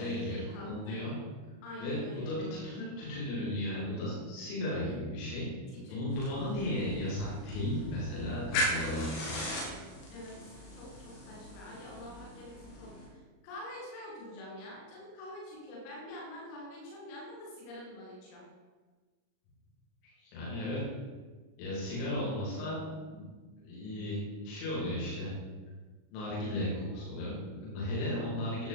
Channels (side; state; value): right; late; 38 ms